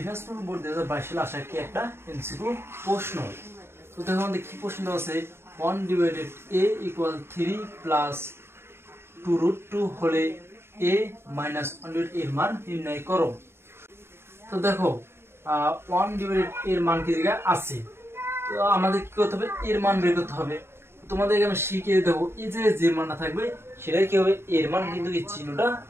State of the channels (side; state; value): left; late; 0.12 ms